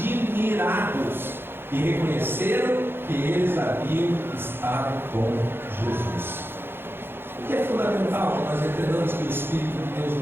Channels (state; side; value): late; left; 0.10 ms